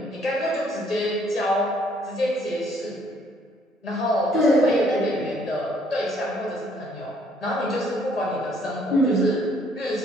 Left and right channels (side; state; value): both; normal; correlation 0.65